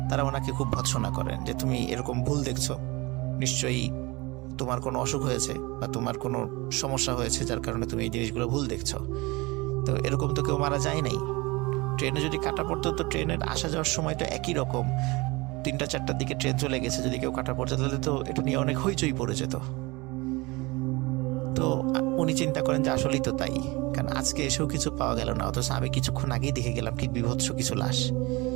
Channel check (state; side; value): quieter; left; 23.9 dB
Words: তারা ওনাকে খুব ভৎসনা করেন যে তুমি এরকম ভুল দেখছো, নিশ্চয়ই তোমার কোনো অসুখ হয়েছে বা তোমার কোনো সমস্যা হয়েছে যার কারণে তুমি এই জিনিসগুলো ভুল দেখছো। তো এরকম তো কেউ মারা যায় নাই, ট্রেনে যদি কাটা পড়তো তো ট্রেনের আসা যাওয়ার সময় তো একই রকম, 3টা-4টার দিকে ট্রেন চলে গেছে, যদি কেউ কাটা পড়তো তাহলে তো এটা নিয়ে অনেক হইচই পড়ে যেত। তো তো উনি চিন্তা করেন যে আসলেই তো তাই, কারণ আজকে এসেও কিছু পাওয়া গেল না, অথচ আমি কিছুক্ষণ আগেই দেখে গেলাম কি বিভৎস কিছু লাশ,